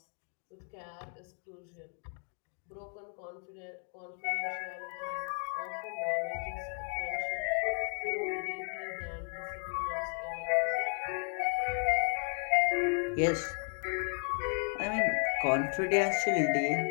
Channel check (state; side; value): quieter; right; 39.7 dB